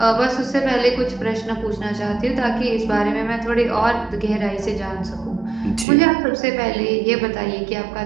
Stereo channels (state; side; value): drops out; left; at 5.9 s